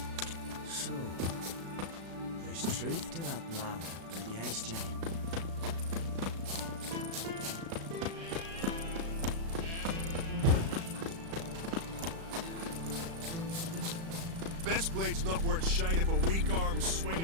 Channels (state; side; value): late; left; 36 ms